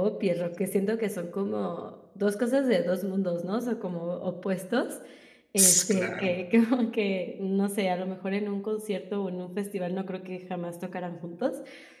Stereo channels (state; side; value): identical; both; correlation 1.00